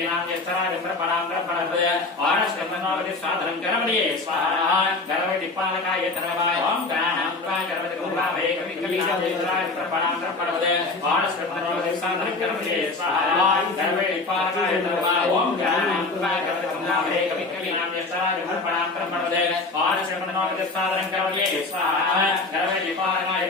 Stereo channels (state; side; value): quieter; right; 3.5 dB